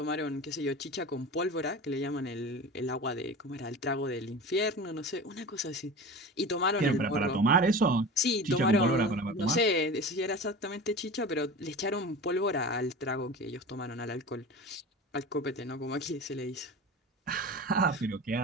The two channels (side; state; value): both; normal; correlation 0.33